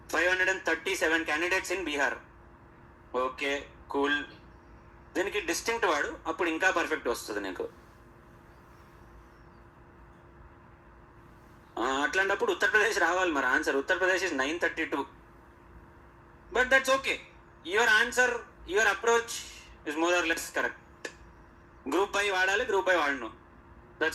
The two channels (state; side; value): identical; both; correlation 1.00